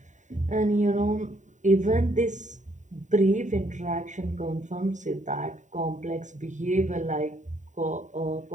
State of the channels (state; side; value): late; left; 0.36 ms